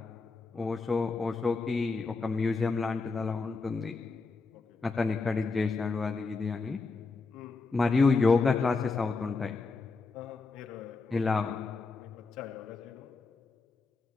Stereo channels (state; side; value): quieter; right; 4.1 dB